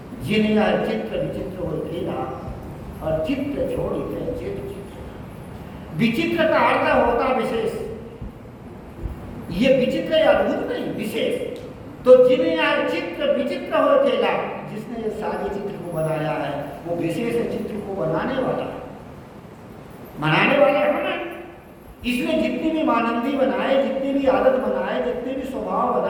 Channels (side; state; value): both; identical; correlation 1.00